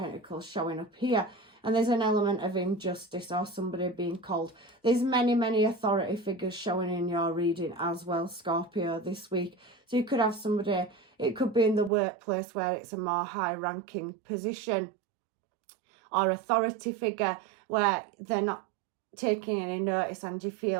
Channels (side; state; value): left; drops out; at 11.9 s